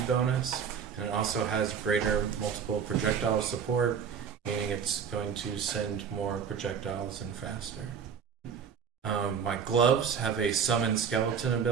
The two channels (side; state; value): left; quieter; 7.0 dB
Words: bonus, and it also has greater multiple projectile support, meaning it's going to send more projectiles and faster. My gloves have a summon skeleton